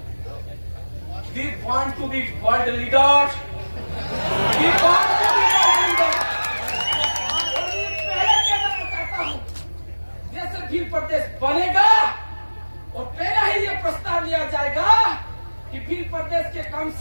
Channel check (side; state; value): both; inverted; correlation -1.00